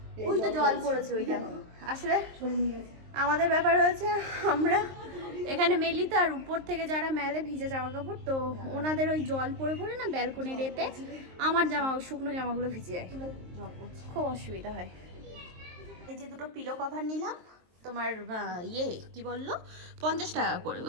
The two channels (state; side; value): late; left; 23 ms